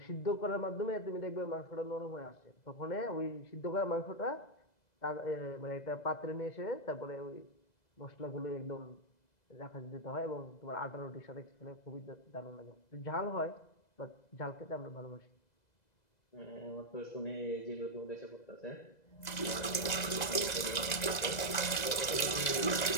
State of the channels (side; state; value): right; late; 2.0 ms